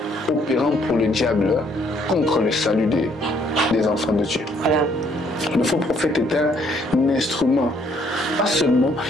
opérant pour le diable contre le salut des enfants de Dieu. Voilà. Le faux prophète est un instrument. Pas seulement,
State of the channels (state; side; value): normal; both; correlation 0.66